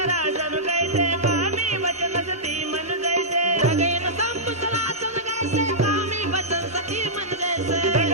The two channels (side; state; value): both; normal; correlation -0.13